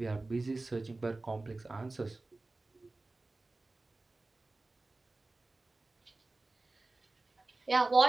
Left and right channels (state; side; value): quieter; left; 3.2 dB